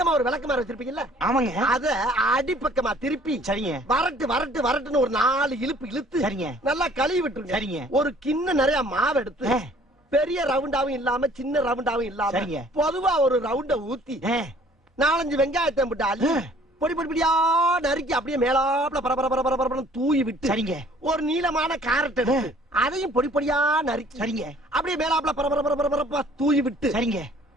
ஒரு விளக்கமாறு வச்சிருப்பீங்கல்ல? ஆமாங்க. அத அடிப்பக்கமா திருப்பி சரிங்க. வரட்டுன்னு ஒரு 4 இழுப்பு இழுத்து சரிங்க. நல்லா கழுவி விட்டுருங்க. சரிங்க. ஒரு கிண்ண நிறைய மாவு எடுத்து பெரிய ரவுண்டாவும் இல்லாம சின்ன ரவுண்டாவும் இல்லாம பொதுவா ஒரு ரவுண்ட ஊத்தி 4-5 வெங்காயத்தை போட்டு அள்ளி பொடி பொடியா நறுக்கி அப்படியே மேலாப்ல பரபர தூவி விட்டு சரிங்க. ஒரு நீளமான கேரட் எடுத்து அதையும் பொடி பொடியா நறுக்கி சரிங்க. அப்படியே மேலாப்ல பரபர தூவி விட்டு சரிங்க.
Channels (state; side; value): normal; both; correlation 0.55